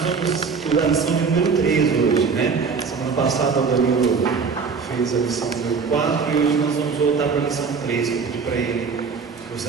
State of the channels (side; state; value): left; quieter; 5.3 dB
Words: vamos estudar a lição de número 3 hoje, né? Semana passada o Danilo fez a lição número 4 e hoje nós vamos voltar para a lição 3, que eu pedi para ele.